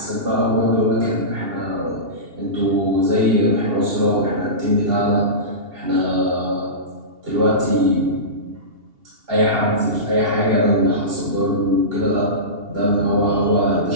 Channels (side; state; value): left; late; 2.8 ms